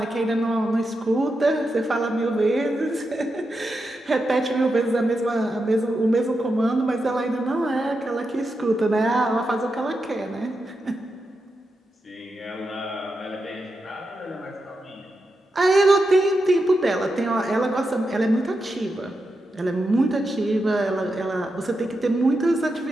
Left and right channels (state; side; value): normal; both; correlation 0.87